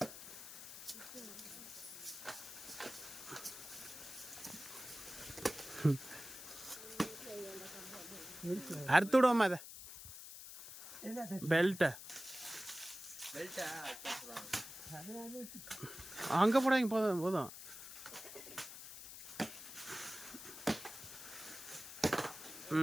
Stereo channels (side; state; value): left; noise; hiss, 12 dB below the sound